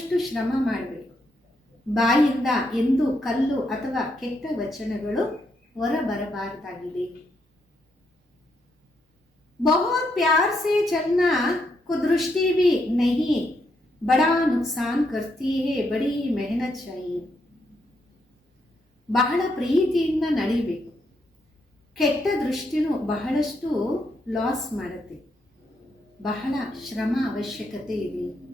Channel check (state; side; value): normal; both; correlation 0.78